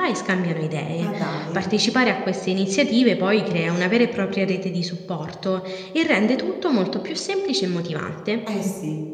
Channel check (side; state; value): both; identical; correlation 1.00